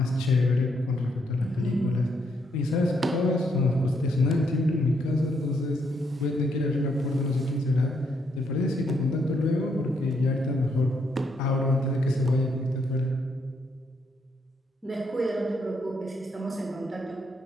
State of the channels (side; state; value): both; normal; correlation 0.75